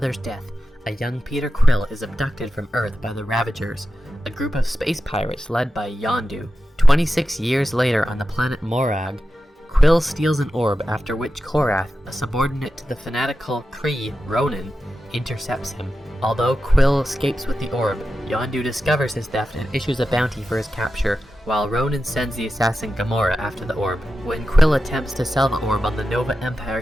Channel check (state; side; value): normal; both; correlation 0.92